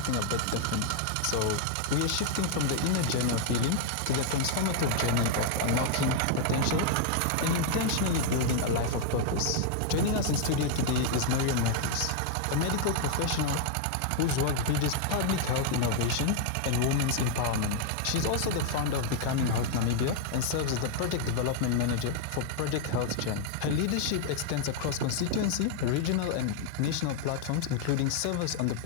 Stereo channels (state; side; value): different; both; correlation 0.00